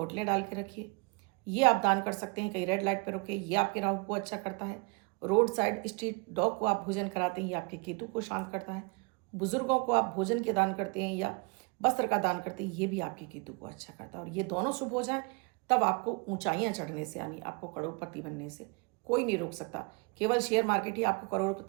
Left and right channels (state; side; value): quieter; left; 31.3 dB